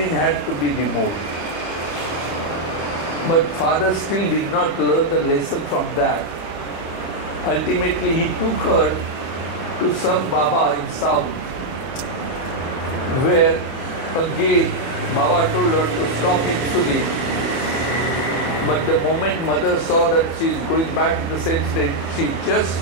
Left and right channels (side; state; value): right; late; 30 ms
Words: had to be removed. But father still did not learn the lesson from that. Ultimately, he took her to some Baba in South, where again Baba told her to stop insulin. But the moment mother saw that she is going back in the same state, she just